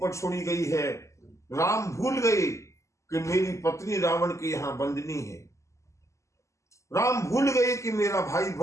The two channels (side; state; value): right; late; 0.14 ms